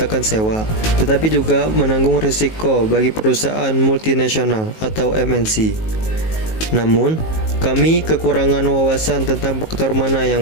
sewa, tetapi juga menanggung risiko bagi perusahaan multinasional atau MNC. Namun, kami kekurangan wawasan tentang faktor mana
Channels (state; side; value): late; right; 19 ms